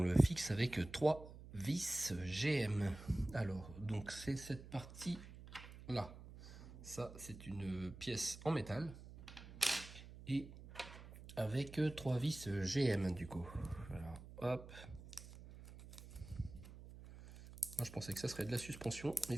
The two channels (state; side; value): noise; right; hum, 15 dB below the sound